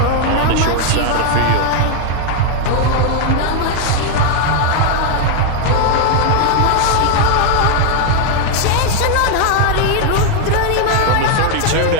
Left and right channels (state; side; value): different; both; correlation 0.00